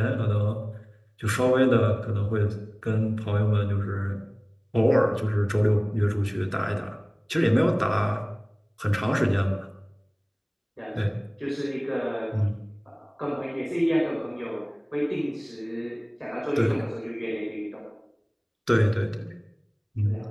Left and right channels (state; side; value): identical; both; correlation 1.00